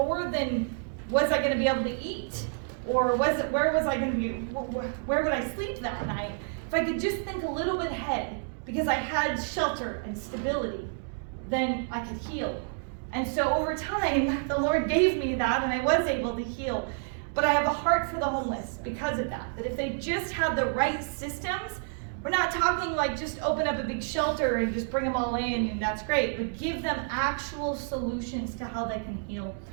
than, was I going to be able to eat? Or where was I going to be, where would I sleep that night? If I could just think a little bit ahead, because I had shelter and stability, then I could heal. And so over time, the Lord gave me that and I was able to heal. But I have a heart for the homeless because of that if they just had the right systems. We're not talking like just open up a big shelter and just bring them all in and that's great, but give them actual solutions to how they can heal.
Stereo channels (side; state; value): left; silent; 58 dB below the other